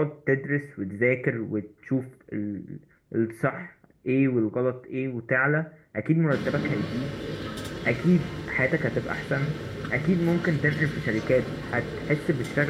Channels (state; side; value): identical; both; correlation 1.00